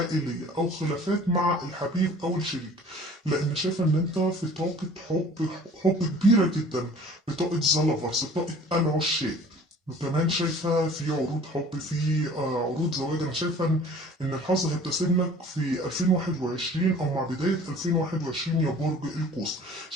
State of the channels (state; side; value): normal; both; correlation 0.48